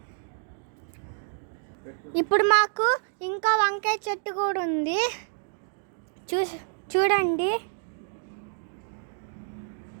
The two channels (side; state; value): left; silent; digital silence